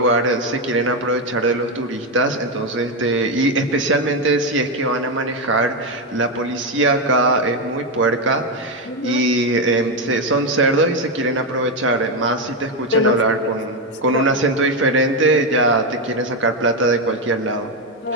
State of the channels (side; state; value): both; normal; correlation 0.08